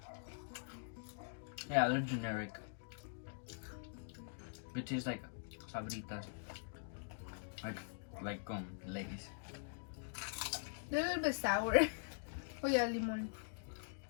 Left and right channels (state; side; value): silent; right; digital silence